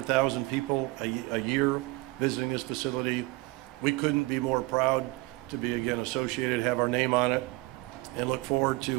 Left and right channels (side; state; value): left; quieter; 22.8 dB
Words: people a year visiting this facility. We couldn't be more proud to be again associated, have our name on it, and look forward